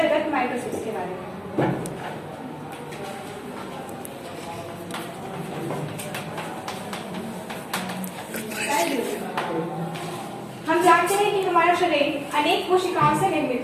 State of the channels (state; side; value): identical; both; correlation 1.00